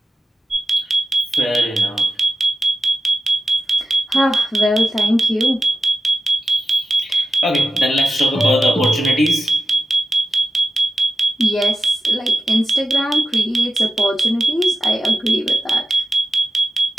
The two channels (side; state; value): both; normal; correlation 0.92